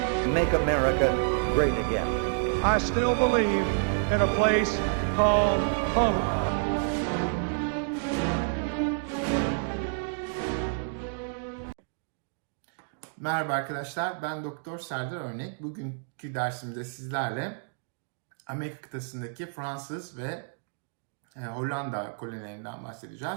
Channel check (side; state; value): left; silent; digital silence